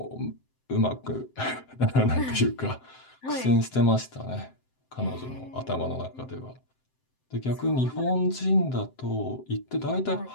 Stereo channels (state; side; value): late; right; 7.7 ms